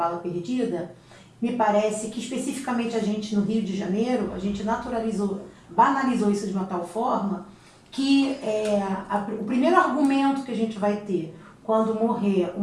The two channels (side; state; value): both; identical; correlation 1.00